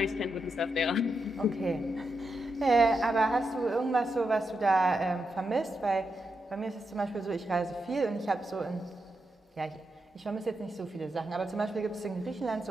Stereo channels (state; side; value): normal; both; correlation 0.85